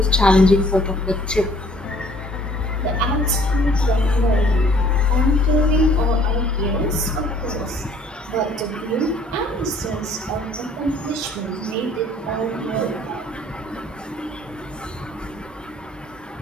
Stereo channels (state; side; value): normal; both; correlation 0.57